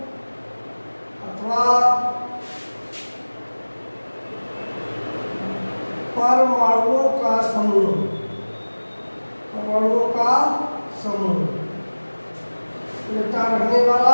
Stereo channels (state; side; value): inverted; both; correlation -1.00